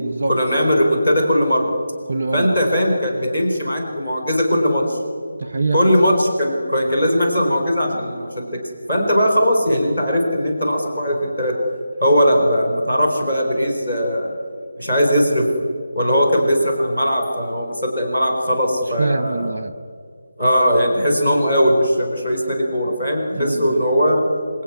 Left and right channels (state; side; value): inverted; both; correlation -0.85